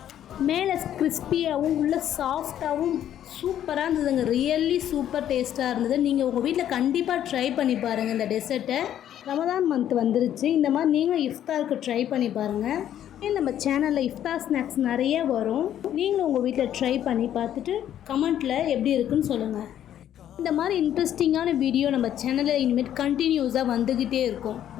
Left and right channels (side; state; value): right; quieter; 10.9 dB